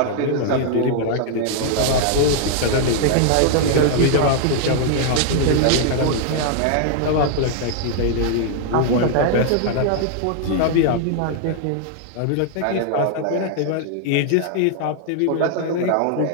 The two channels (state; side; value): different; both; correlation 0.00